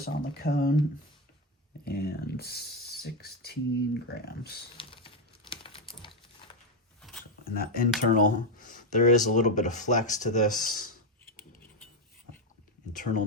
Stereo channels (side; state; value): both; normal; correlation 0.06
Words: on the cone and 16 grams. And that internal, there is a little bit of flex to this. Internal